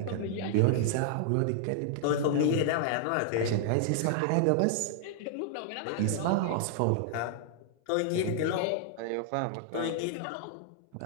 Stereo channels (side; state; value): both; different; correlation -0.01